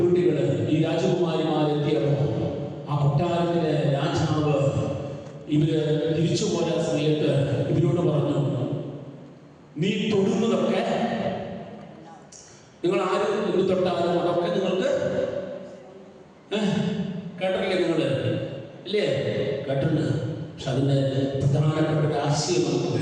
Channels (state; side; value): identical; both; correlation 1.00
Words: ഈ രാജകുമാരിമാരെത്തിയപ്പോ ആ കൊട്ടാരത്തിലെ രാജാവ് ഇവര് തിരിച്ചു പോയ സമയത്ത് ഇവരോട് പറഞ്ഞു, നീ തൊടുന്നതൊക്കെ, നിങ്ങൾ ആരും എന്ത് തൊട്ടാലും അതൊക്കെ നിങ്ങൾക്ക് കേട്ടില്ലേ? നിങ്ങള് ഇല്ലേ? കേട്ടിട്ടുണ്ട്. പക്ഷെ അതിന്റെ പ്രധാനപ്പെട്ട ഒരു ആശയം നമുക്ക്